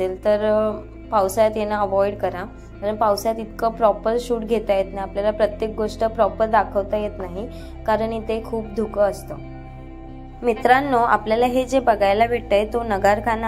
तर पावसाळ्यात येणं अवॉइड करा, कारण पावसाळ्यात इतकं प्रॉपर शूट घेता येत नाही, आपल्याला प्रत्येक गोष्ट प्रॉपर दाखवता येत नाही, कारण इथे खूप धुकं असतं। मित्रांनो, आपल्याला हे जे बघायला भेटतंय तो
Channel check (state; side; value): identical; both; correlation 1.00